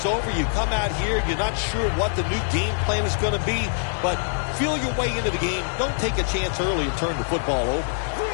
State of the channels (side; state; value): right; silent; digital silence